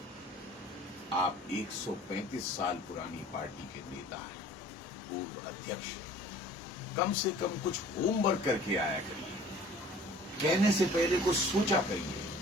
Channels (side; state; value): both; normal; correlation 0.49